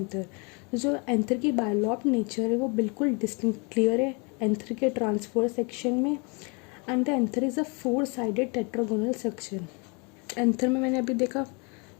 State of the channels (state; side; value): quieter; right; 32.4 dB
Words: जो एंथर की बायलॉब्ड नेचर है वो बिल्कुल डिस्टिंक्ट क्लियर है एंथर के ट्रांसफर सेक्शन में। And the anther is a 4 sided tetragonal section. Anther में मैंने अभी देखा